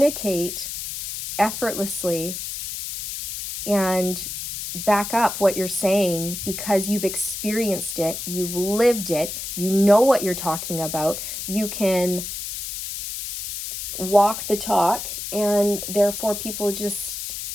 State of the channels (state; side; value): noise; left; hiss, 6 dB below the sound